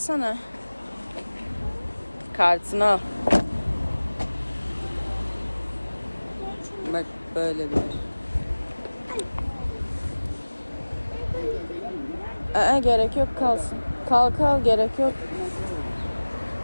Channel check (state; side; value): inverted; both; correlation -1.00